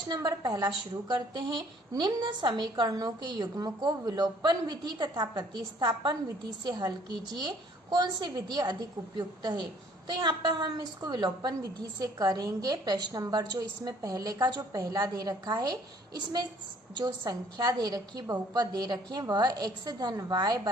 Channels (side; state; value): both; normal; correlation 0.59